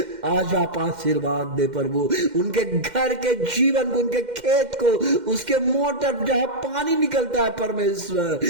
आज आप आशीर्वाद दे प्रभु, उनके घर के जीवन को, उनके खेत को, उसके मोटर जहां पानी निकलता है परमेश्वर,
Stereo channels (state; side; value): late; left; 2.1 ms